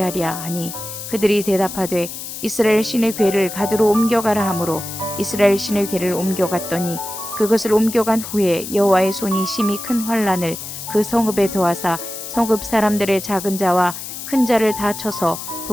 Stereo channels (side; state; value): left; noise; hiss, 9 dB below the sound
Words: 하니 그들이 대답하되 이스라엘 신의 궤를 가드로 옮겨가라 하므로 이스라엘 신의 궤를 옮겨갔더니 그것을 옮겨간 후에 여호와의 손이 심히 큰 환난을 그 성읍에 더하사 성읍 사람들의 작은 자와 큰 자를 다 쳐서